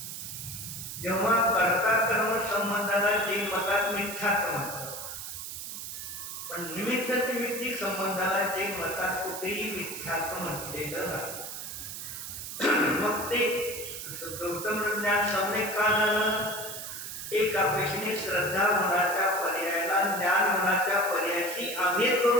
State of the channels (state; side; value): noise; right; hiss, 8 dB below the sound